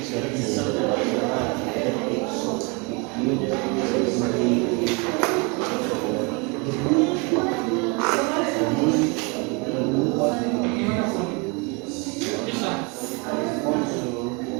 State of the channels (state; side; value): quieter; left; 30.7 dB